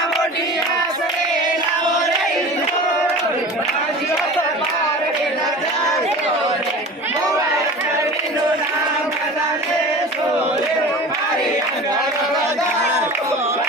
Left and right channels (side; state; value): both; normal; correlation 0.36